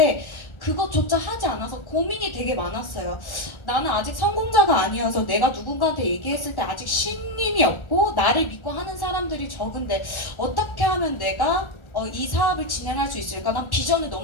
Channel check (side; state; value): right; late; 1.4 ms